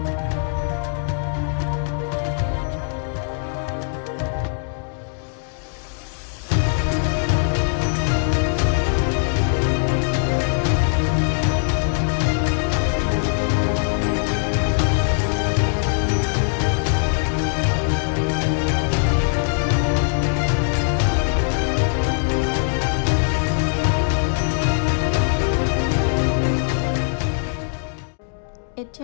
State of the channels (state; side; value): silent; right; digital silence